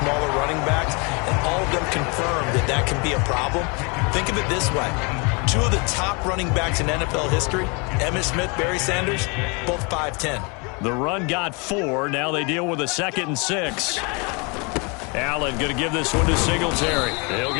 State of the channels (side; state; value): right; quieter; 31.4 dB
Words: running backs? And all of them confirmed that that can be a problem. Think of it this way. 2 of the top running backs in NFL history, Emmitt Smith, Barry Sanders, both 5'10". The run got 4. Now they deal with a 2nd and 6. Allen going to give this one to Singletary. They'll